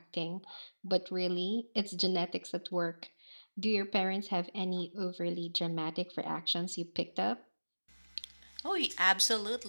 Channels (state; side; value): inverted; both; correlation -1.00